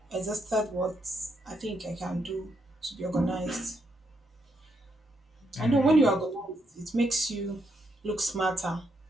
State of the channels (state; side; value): normal; both; correlation 0.78